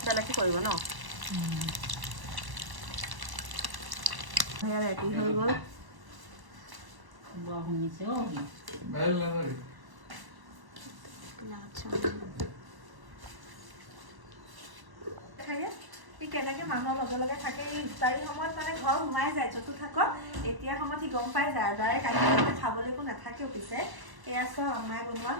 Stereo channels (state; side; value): late; left; 1.1 ms